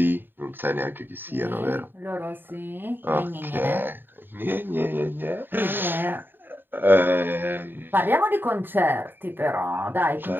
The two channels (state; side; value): late; left; 0.095 ms